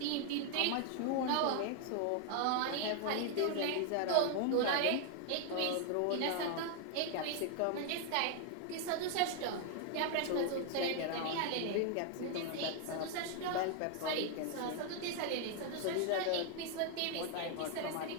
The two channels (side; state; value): both; different; correlation 0.00